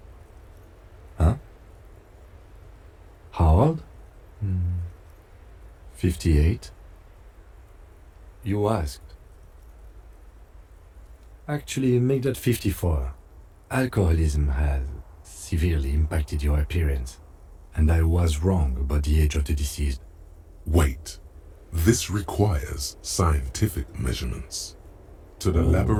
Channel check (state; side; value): identical; both; correlation 1.00